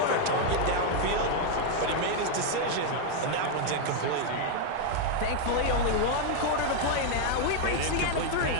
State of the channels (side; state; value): both; different; correlation 0.00